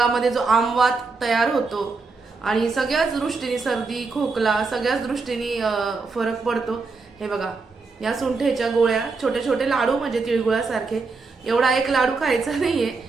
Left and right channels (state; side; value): quieter; left; 4.2 dB